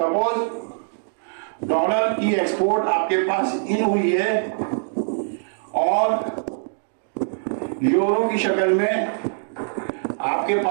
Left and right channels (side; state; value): left; silent; digital silence